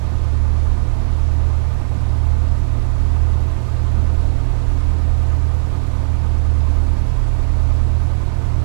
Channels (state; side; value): silent; left; digital silence